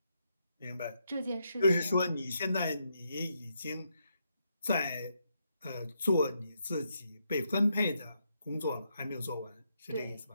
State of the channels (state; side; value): inverted; both; correlation -0.79